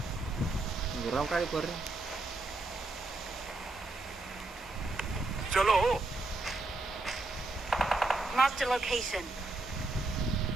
గుర్రం కాడి కొర్రి. चलो Marked a location.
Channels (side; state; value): left; quieter; 3.1 dB